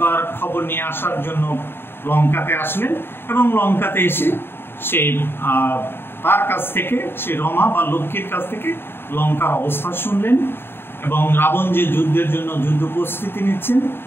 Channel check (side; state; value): right; late; 0.11 ms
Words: খবর নিয়ে আসার জন্য লঙ্কাতে আসলেন, এবং লঙ্কাতে এসে সে তার কাছ থেকে, সে রমা বা লক্ষ্মীর কাছ থেকে লঙ্কার অবস্থা শুনলেন, এবং রাবণ যে যুদ্ধের জন্য যুদ্ধ প্রস্তুতি নিচ্ছেন